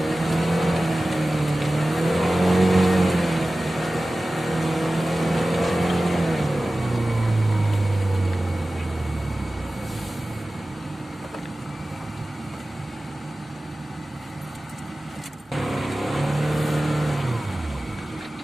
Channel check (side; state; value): both; normal; correlation 0.96